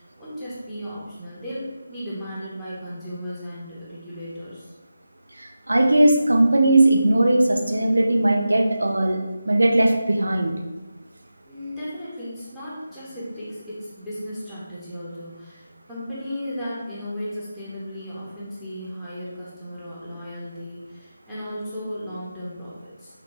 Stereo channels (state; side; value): inverted; both; correlation -0.92